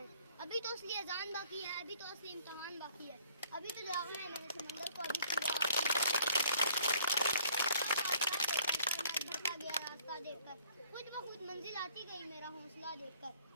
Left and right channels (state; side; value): inverted; both; correlation -0.58